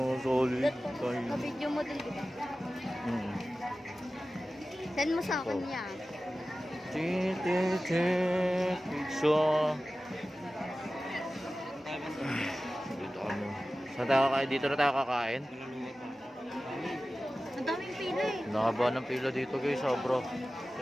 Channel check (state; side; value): normal; both; correlation 0.95